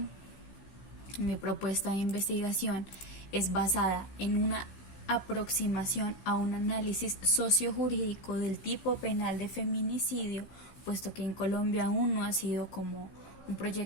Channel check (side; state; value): right; late; 15 ms